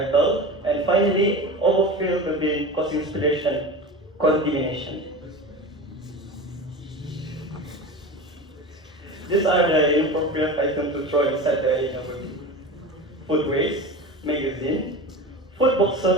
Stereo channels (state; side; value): normal; both; correlation 0.30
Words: And finally, overfill the bin causing spillage contamination. These are the inappropriate items to throw inside the bin. Food waste, magazine, food